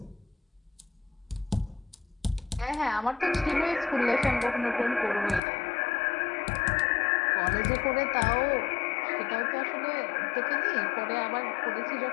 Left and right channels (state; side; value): drops out; right; at 5.4 s